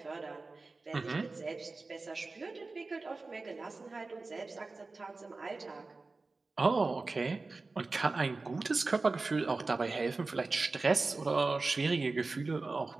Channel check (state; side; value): quieter; left; 3.6 dB